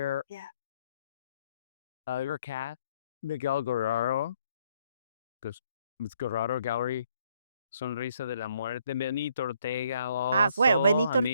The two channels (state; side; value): inverted; both; correlation -0.69